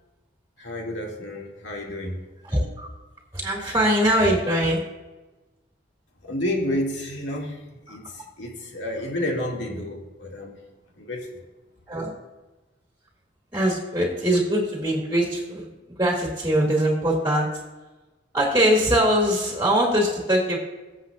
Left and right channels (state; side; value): normal; both; correlation 0.49